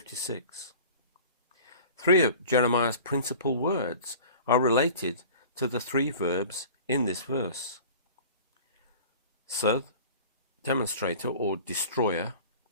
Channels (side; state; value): both; inverted; correlation -0.42